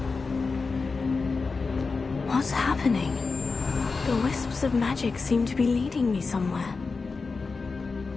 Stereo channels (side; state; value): right; quieter; 4.4 dB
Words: What's happening? The wisps of magic seem to be leading me somewhere.